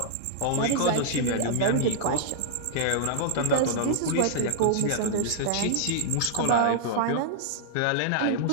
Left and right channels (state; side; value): different; both; correlation -0.01